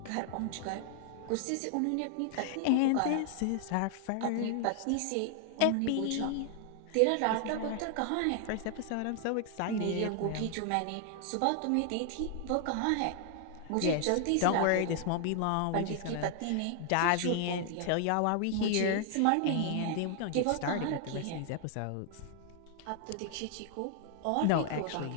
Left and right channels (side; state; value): both; different; correlation 0.00